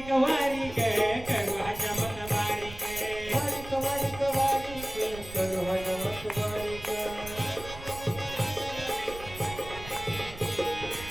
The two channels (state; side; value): noise; right; rumble, 14 dB below the sound